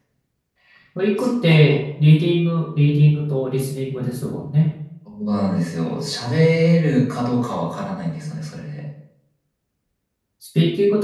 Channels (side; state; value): both; identical; correlation 1.00